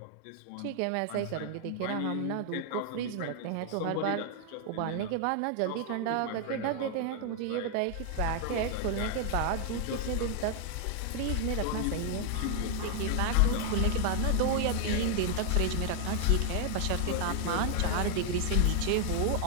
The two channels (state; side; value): different; both; correlation 0.00